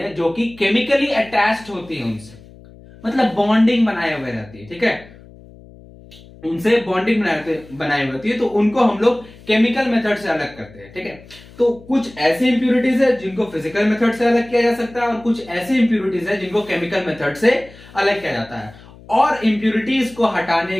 जो कि केमिकली अटैच्ड होती है उनसे, मतलब बॉन्डिंग बनाए हुए रहती है, ठीक है। उनसे बॉन्डिंग बनाई होती है तो उनको हम लोग केमिकल मेथड से अलग करते हैं, ठीक है। तो कुछ ऐसी इंप्योरिटीज है जिनको फिजिकल मेथड से अलग किया जा सकता है, और कुछ ऐसी इंप्योरिटीज है जिनको केमिकल मेथड से अलग किया जाता है। और इंप्योरिटीज को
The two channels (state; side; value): noise; left; hum, 22 dB below the sound